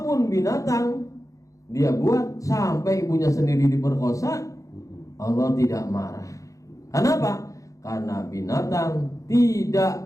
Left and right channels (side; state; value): right; late; 0.16 ms